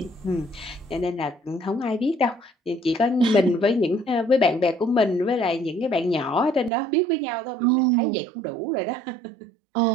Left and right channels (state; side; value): drops out; left; at 6.7 s